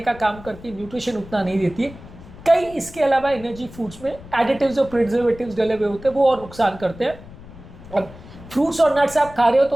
का काम करती है, न्यूट्रिशन उतना नहीं देती है। कई इसके अलावा एनर्जी फूड्स में एडिटिव्स और प्रिजर्वेटिव्स डले हुए होते हैं, वो और नुकसान करते हैं। अब फ्रूट्स और नट्स आप खा रहे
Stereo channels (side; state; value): left; noise; rumble, 18 dB below the sound